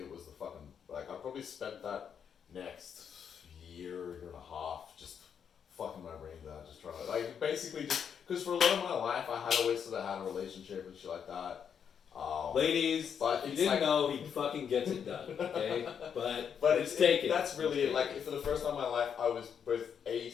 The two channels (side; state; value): right; quieter; 7.6 dB